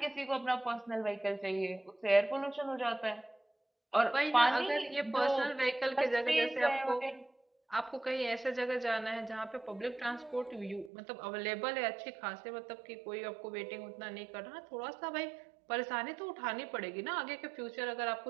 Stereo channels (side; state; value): left; drops out; at 10.9 s